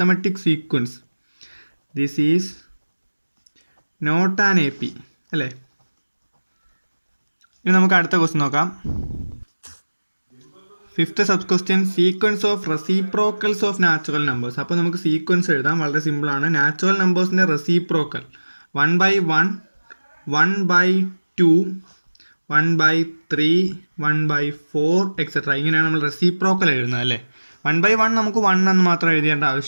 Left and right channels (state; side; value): inverted; both; correlation -1.00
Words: sequence. This is not an AP അല്ലേ. ഇനി നമുക്ക് അടുത്ത ക്വസ്റ്റ്യൻ നോക്കാം. 5th sub question sequence of reciprocals of natural numbers. അപ്പോൾ നമുക്ക് സീക്വൻസ് എഴുതാം, വളരെ സിമ്പിളാണ്. നാച്ചുറൽ നമ്പേഴ്സിൻ്റെ റെസിപ്രോക്കൽ 1/1, 1/2, 1/3, 1/4 എക്സെട്ര. ഇങ്ങനെയാണ് നമ്മൾ റെസിപ്രോക്കൽ എഴുതുന്നത് അല്ലേ. 1/1 നമുക്ക് 1 എന്ന് മാത്രം എഴുതേണ്ട